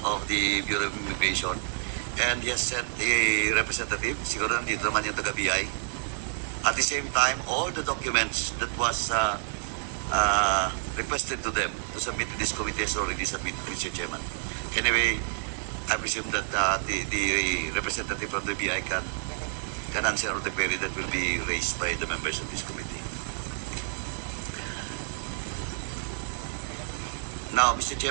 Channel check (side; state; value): left; silent; digital silence